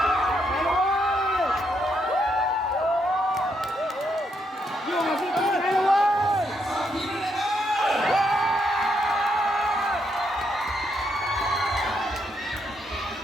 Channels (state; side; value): normal; both; correlation 0.77